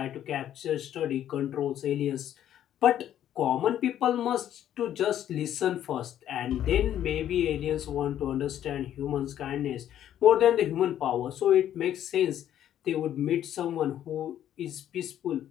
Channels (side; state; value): right; quieter; 11.1 dB